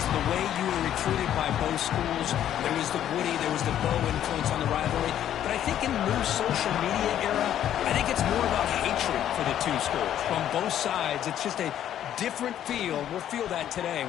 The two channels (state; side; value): quieter; right; 10.9 dB